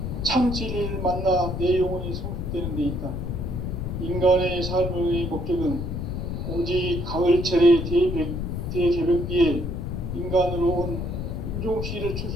참 진리를 만나 내 영혼이 성숙되는 데 있다. 인간의 삶의 목적은 오직 가을철의 대개벽기에 인간으로 온 인종시를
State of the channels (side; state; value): left; noise; rumble, 4 dB below the sound